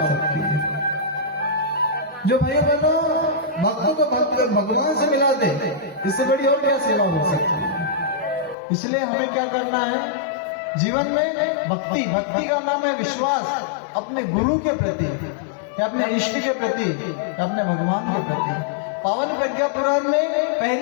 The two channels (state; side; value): drops out; right; at 8.6 s